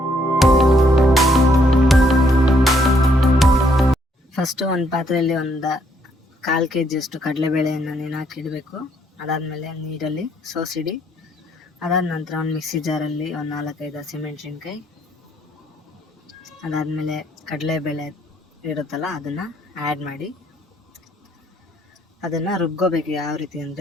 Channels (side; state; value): both; normal; correlation 0.70